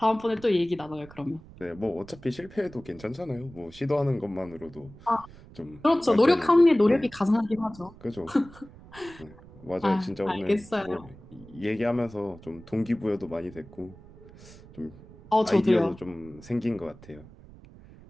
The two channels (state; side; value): noise; right; rumble, 20 dB below the sound